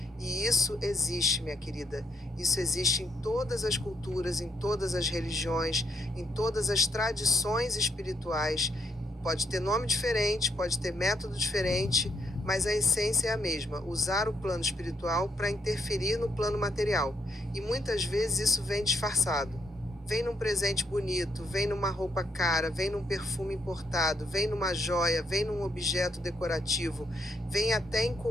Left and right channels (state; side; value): normal; both; correlation 0.75